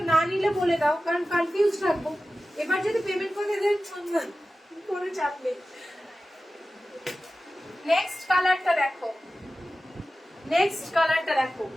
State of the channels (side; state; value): both; normal; correlation 0.94